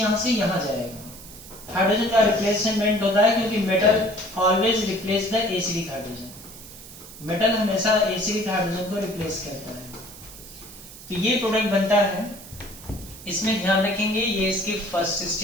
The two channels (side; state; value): right; noise; hiss, 16 dB below the sound